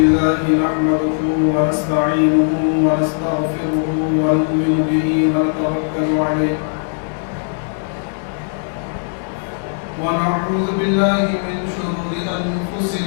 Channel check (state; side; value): silent; right; digital silence